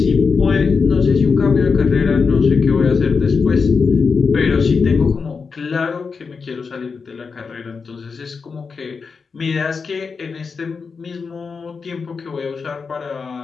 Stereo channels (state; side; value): quieter; right; 5.1 dB